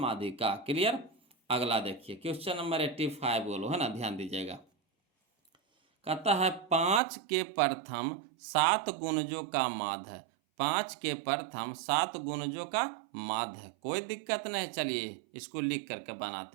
क्लियर। अगला देखिए क्वेश्चन नंबर 85 बोलो, है ना, ध्यान दीजिएगा। कहता है 5 के प्रथम 7 गुणजों का माध्य है। 5 के प्रथम 7 गुणजों का माध्य है। कोई दिक्कत नहीं, चलिए इसको लिख करके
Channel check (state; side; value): drops out; left; at 7.0 s